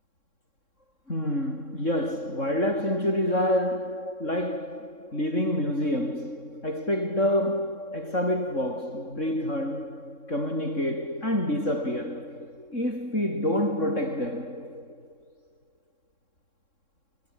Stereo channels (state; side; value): late; right; 3.6 ms